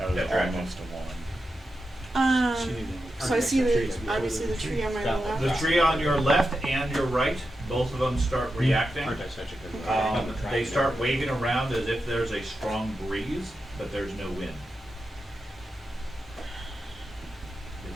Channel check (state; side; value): normal; both; correlation 0.89